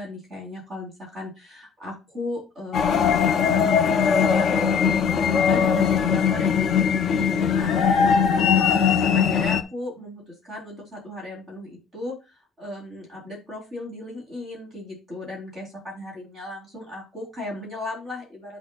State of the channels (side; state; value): right; quieter; 6.2 dB